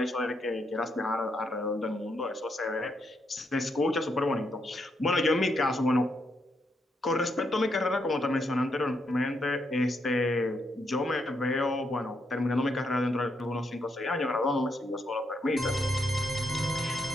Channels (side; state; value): both; normal; correlation 0.79